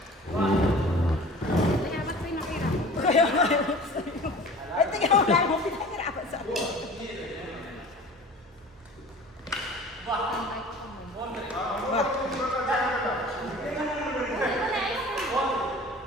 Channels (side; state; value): both; normal; correlation 0.43